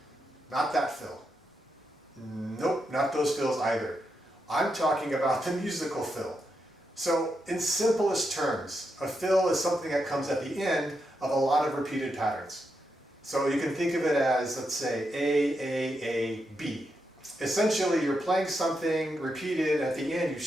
Not that fill. Nope, not those fills either. I'm talking about the musical fill. So in simplest terms, a fill is something that comes at the end of a lot of repeated patterns. So you can think of it as, let's say, A, B. Essentially, you're playing something repeated, at the end you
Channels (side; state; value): both; normal; correlation 0.84